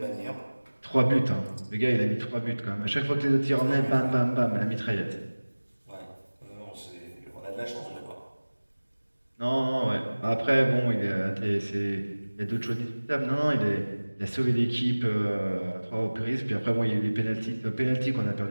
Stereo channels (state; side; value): inverted; both; correlation -1.00